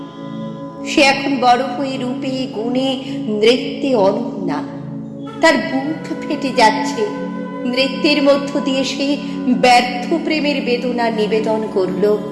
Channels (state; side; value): identical; both; correlation 1.00